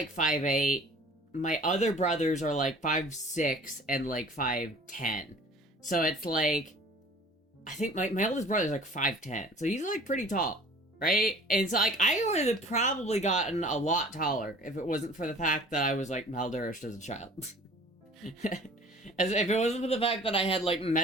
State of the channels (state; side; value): normal; both; correlation 0.47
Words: 5'8". My other brothers are, like, 5'6" and, like, 5'10". So it's, like... I think my oldest brother is, like, 5'10". So he's, like, pretty tall. Right? And so, like, I would have probably gotten a lot taller if it wasn't for the fact that I was, like, malnourished as a child. As if it wasn't for the fact that I had, like,